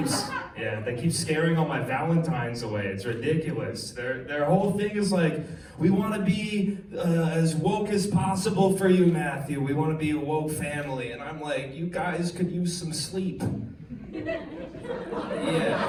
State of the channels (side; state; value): both; identical; correlation 1.00